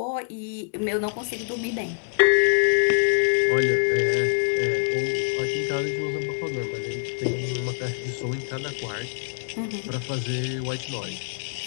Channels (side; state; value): right; silent; digital silence